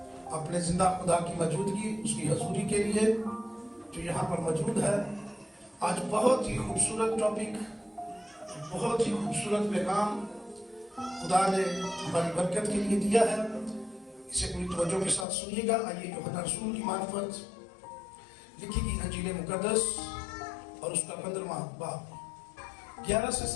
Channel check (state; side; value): drops out; right; at 15.2 s